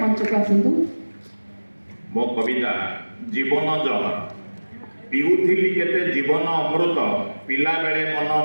मंच को आसतु। मो कविता जीवन जहर पिउथिली केते जीवन अमृत पिला बेले मन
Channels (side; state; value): both; inverted; correlation -1.00